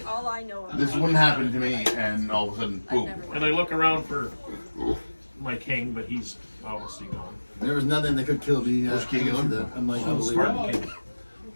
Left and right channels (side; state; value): both; inverted; correlation -1.00